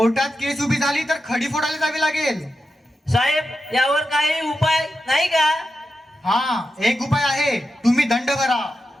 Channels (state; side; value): normal; both; correlation 0.89